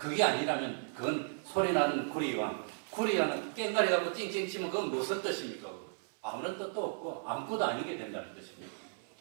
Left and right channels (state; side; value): silent; left; 54 dB below the other